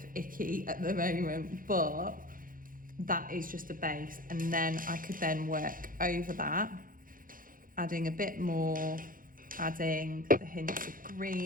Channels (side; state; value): left; late; 0.40 ms